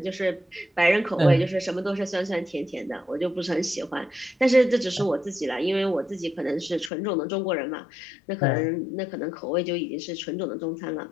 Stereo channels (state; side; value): drops out; right; at 6.9 s